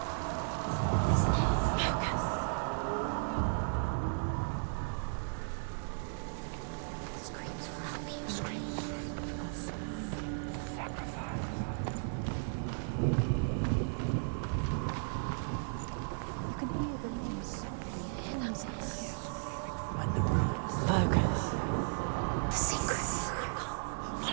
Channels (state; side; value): silent; left; digital silence